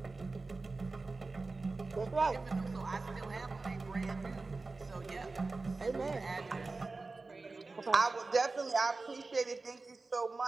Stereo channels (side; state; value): left; quieter; 3.7 dB